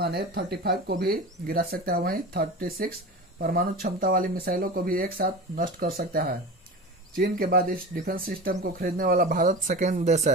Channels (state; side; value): normal; both; correlation 0.30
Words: F-35 को भी गिरा सकता है, वहीं 36 परमाणु क्षमता वाली मिसाइलों को भी एक साथ नष्ट कर सकता है। चीन के बाद इस डिफेंस सिस्टम को खरीदने वाला भारत सेकेंड देश